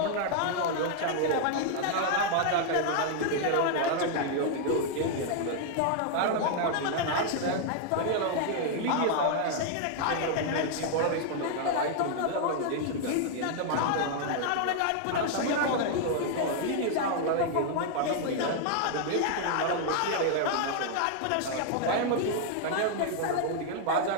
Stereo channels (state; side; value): different; both; correlation 0.00